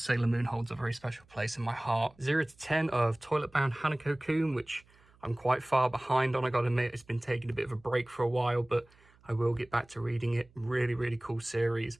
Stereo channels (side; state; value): right; noise; hum, 30 dB below the sound